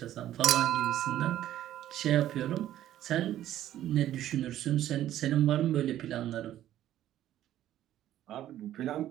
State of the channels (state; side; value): quieter; left; 12.6 dB